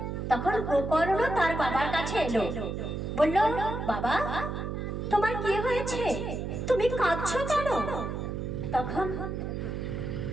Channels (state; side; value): noise; right; hum, 4 dB below the sound